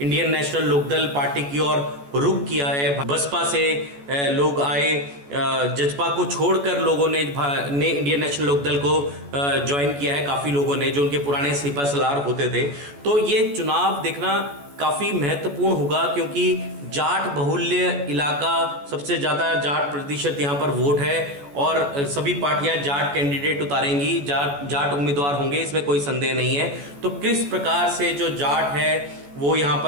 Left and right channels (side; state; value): left; late; 14 ms